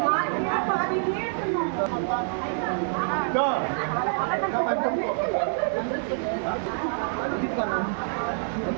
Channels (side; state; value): left; silent; digital silence